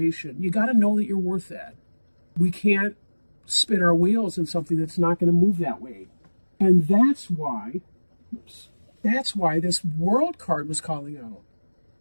You got to know that you're worth that. We can't spin our wheels in something that's not going to move that way. And that's why this World card was calling out.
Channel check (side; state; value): both; inverted; correlation -1.00